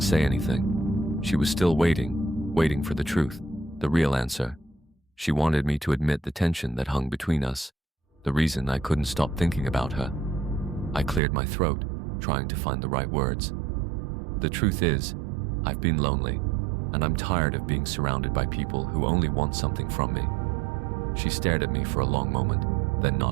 say anything. She was still waiting for the truth, the real answer. She wanted me to admit the tension that hung between us, the reason I couldn't stop thinking about her. I cleared my throat, trying to find the right words. "The truth is, I've been lonely, and I'm tired of being surrounded by people who only want something from me." She stared at me for a long moment, then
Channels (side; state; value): left; drops out; at 11.2 s